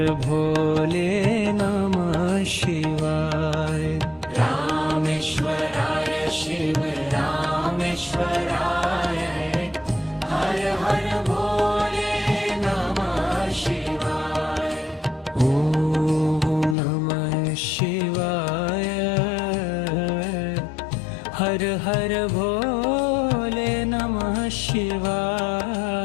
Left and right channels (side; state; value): right; drops out; at 16.8 s